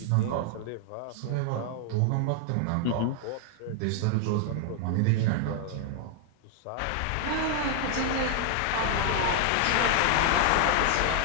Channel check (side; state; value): both; different; correlation 0.00